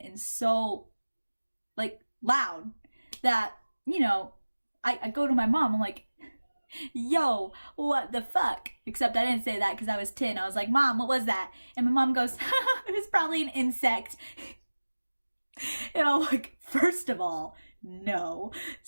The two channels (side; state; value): both; inverted; correlation -1.00